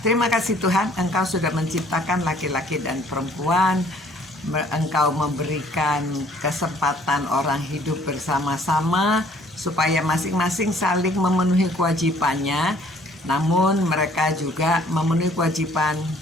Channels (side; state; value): both; normal; correlation 0.59